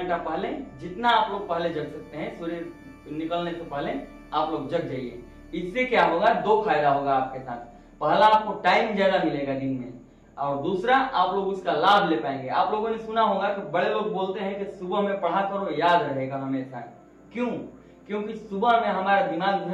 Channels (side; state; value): both; identical; correlation 1.00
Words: पहले, जितना आप लोग पहले जग सकते हैं, सूर्य निकलने से पहले आप लोग जग जाइए। इससे क्या होगा? 2 फायदा होगा आपके साथ। पहला, आपको टाइम ज्यादा मिलेगा दिन में, और दूसरा आप लोग उसका लाभ ले पाएंगे। आप लोगों ने सुना होगा कि बड़े लोग बोलते हैं कि सुबह में पढ़ा करो, याद रहेगा हमेशा। क्यों? क्योंकि सुबह में हमारा दिमाग जो